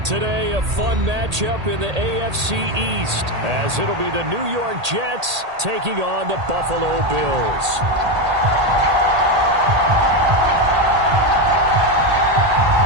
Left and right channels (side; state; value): left; late; 1.8 ms